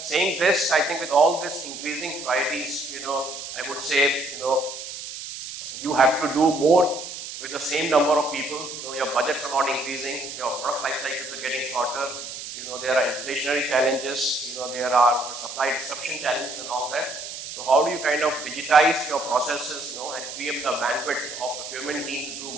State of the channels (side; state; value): right; noise; hiss, 9 dB below the sound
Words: saying this, I think with all this increasing priorities, I would say, you have to do more with the same number of people. Your budgets are not increasing, your product life cycles are getting shorter, there are inflationary challenges, there are supply disruption challenges and all that. So how do you kind of digitize your processes, and free up the bandwidth of procurement team to do